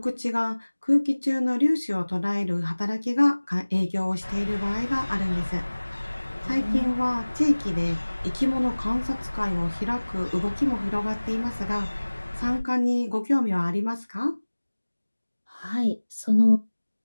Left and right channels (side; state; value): both; inverted; correlation -1.00